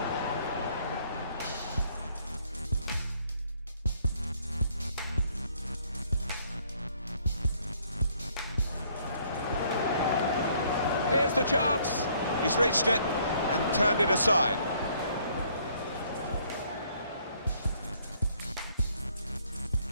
Here's the chance. He's reached it and turned it aside.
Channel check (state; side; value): inverted; both; correlation -0.65